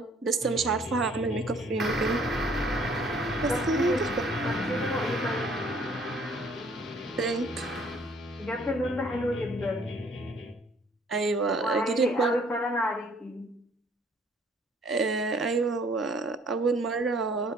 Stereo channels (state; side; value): normal; both; correlation 0.59